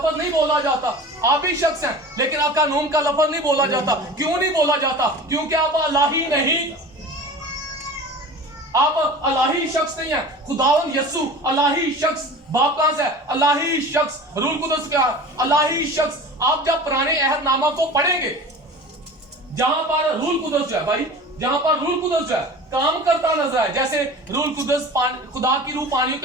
نہیں بولا جاتا. آپ بھی شخص ہیں لیکن اکانوم کا لفظ نہیں بولا جاتا. کیوں نہیں بولا جاتا؟ کیونکہ آپ الہی نہیں, آپ الہی شخص نہیں ہیں. خداوند یسوع الہی شخص. باپ کہاں سے ہے؟ الہی شخص. روح القدس کیا ہے؟ الہی شخص. آپ جب پرانے عہد نامہ کو پڑھیں گے جہاں پر روح القدس جو ہے بھائی, جہاں پر روح القدس جو ہے کام کرتا نظر آئے, جیسے روح القدس خدا کی روح پانیوں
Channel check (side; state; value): both; normal; correlation 0.37